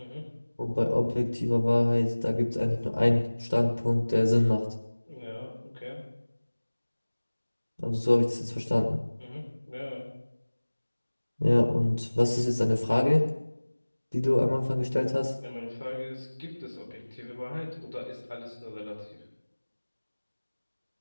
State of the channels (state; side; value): inverted; both; correlation -1.00